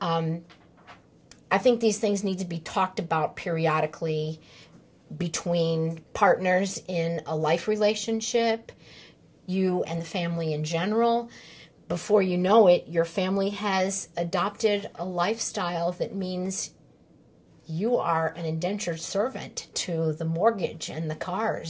I think these things need to be talked about periodically between partners in a life relationship, you and the family in general. Before you know it, your family has adopted a lifestyle that means you are an indentured servant to the mortgage and the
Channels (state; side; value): identical; both; correlation 1.00